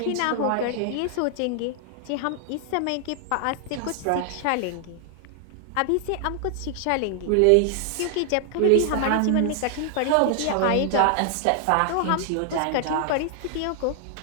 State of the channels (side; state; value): both; different; correlation 0.00